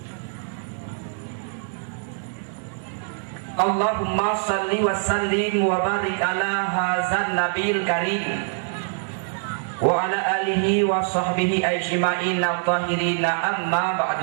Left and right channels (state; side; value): silent; left; 63 dB below the other